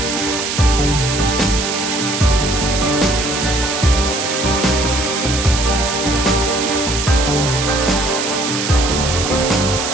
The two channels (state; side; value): noise; right; hiss, 3 dB below the sound